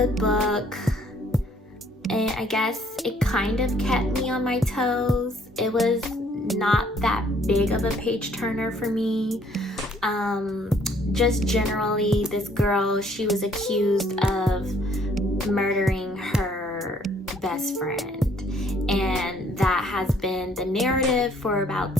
book, and I guess it kind of kept me on my toes. It was not that big of a page turner for me. Just generally, this girl, she was accused of murdering her best friend, and that has been the narrative for about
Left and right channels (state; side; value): normal; both; correlation 0.63